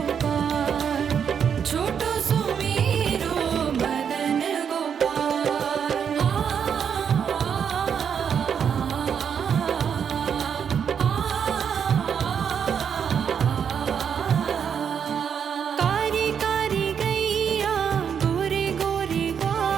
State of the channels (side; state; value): left; quieter; 7.5 dB